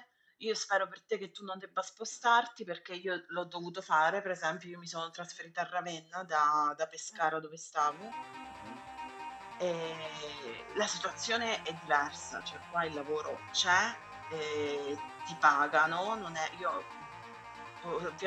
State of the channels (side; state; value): both; identical; correlation 1.00